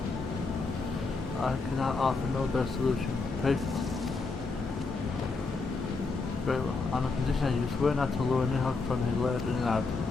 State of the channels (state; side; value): quieter; right; 4.0 dB